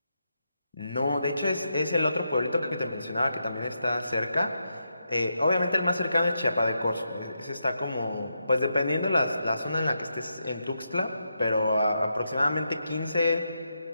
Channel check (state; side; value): inverted; both; correlation -0.84